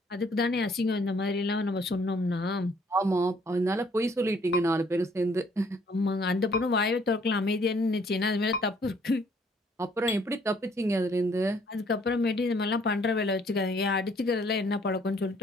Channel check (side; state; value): both; normal; correlation 0.63